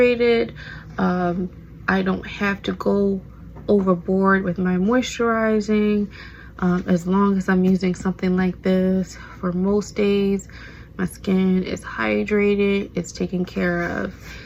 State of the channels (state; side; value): identical; both; correlation 1.00